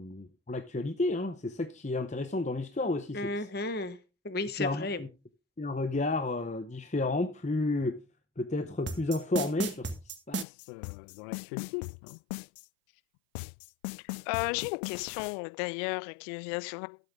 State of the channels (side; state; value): right; drops out; at 10.5 s